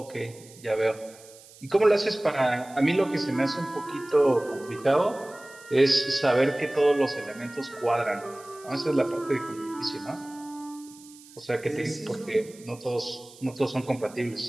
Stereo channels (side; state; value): right; noise; hiss, 22 dB below the sound